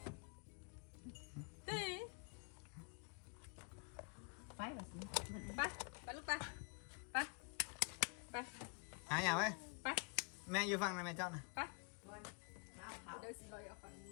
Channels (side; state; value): right; quieter; 35.9 dB